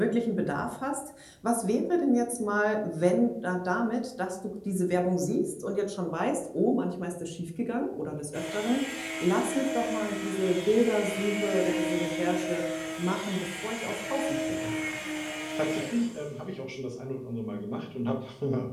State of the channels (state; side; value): identical; both; correlation 1.00